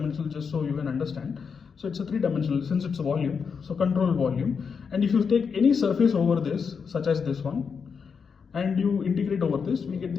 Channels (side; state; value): right; quieter; 6.0 dB